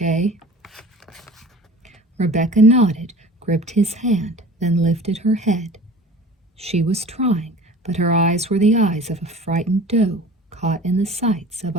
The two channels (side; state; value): both; normal; correlation 0.42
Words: Rebecca nodded, gripped his hand, then lifted her head. She was trying, but her eyes were the eyes of a frightened doe caught in the sights of